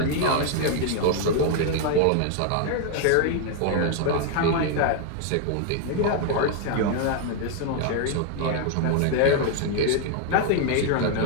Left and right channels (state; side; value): different; both; correlation 0.00